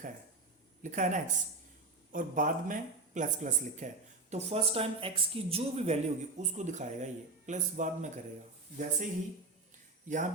है ना एक्स, और बाद में प्लस प्लस लिखा है, तो फर्स्ट टाइम एक्स की जो भी वैल्यू होगी उसको दिखाएगा, ये प्लस बाद में करेगा। वैसे ही यहाँ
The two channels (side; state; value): left; quieter; 3.4 dB